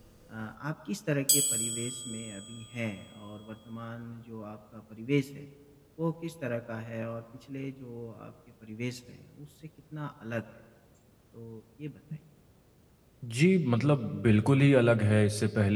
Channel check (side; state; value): both; identical; correlation 1.00